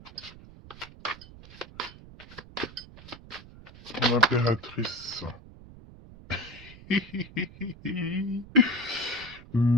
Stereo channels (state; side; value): noise; right; rumble, 18 dB below the sound